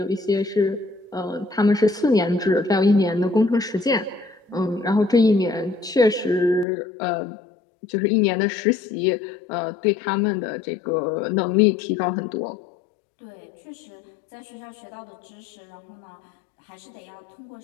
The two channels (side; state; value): right; drops out; at 6.7 s